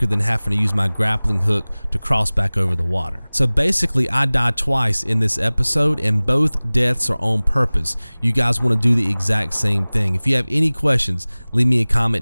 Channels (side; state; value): both; inverted; correlation -1.00